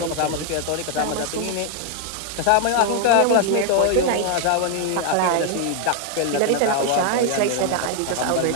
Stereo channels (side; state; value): both; different; correlation 0.00